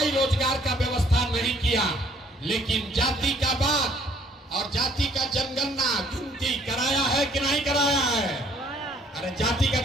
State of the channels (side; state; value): both; normal; correlation 0.61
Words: रोजगार का व्यवस्था नहीं किया, लेकिन जाति का बात और जाति का जनगणना गिनती कराया है कि नहीं कराया है? अरे जाति का